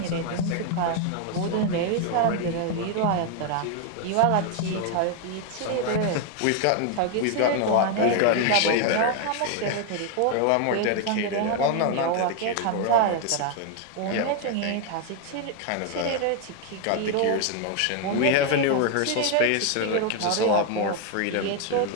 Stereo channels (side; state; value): both; different; correlation 0.01